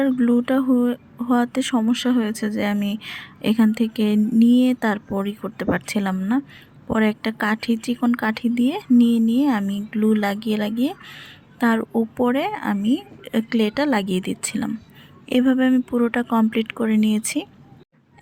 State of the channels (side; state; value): both; identical; correlation 1.00